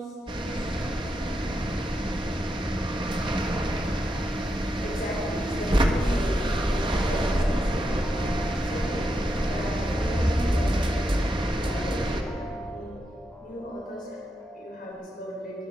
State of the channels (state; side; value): normal; both; correlation 0.84